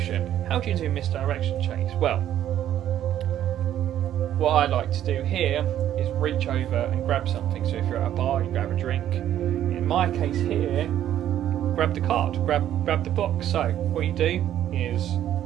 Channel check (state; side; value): quieter; left; 11.4 dB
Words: How do you do misdirection, Chase? Well, what I like to do here is reach over and grab something. So if you're at a bar, you grab a drink. In my case here, grab the card, grab the box. So what you do is,